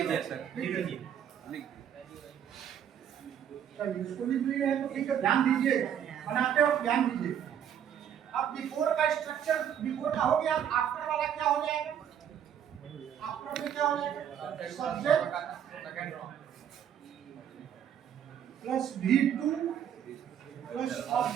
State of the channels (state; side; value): quieter; left; 9.2 dB